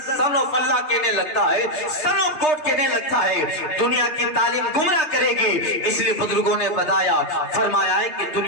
سن آف اللہ کہنے لگتا ہے, سن آف گاڈ کہنے لگتا ہے. دنیا کی تعلیم گمراہ کرے جائے گی. اس لیے بزرگوں نے بتایا فرمایا ہے کہ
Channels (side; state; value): right; late; 3.3 ms